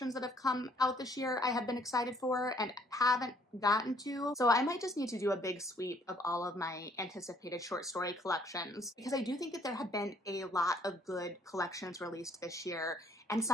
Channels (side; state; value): both; normal; correlation 0.63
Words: that have come out this year I have been excited for and haven't gotten to. So I might just need to do a big sweep of all of my anticipated short story collections, because I do think that there have been a lot of good collections released this year, and